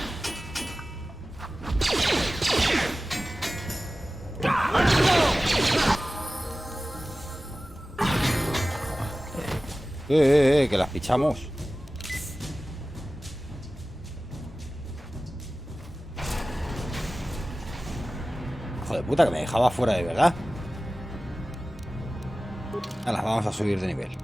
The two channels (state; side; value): normal; both; correlation 0.96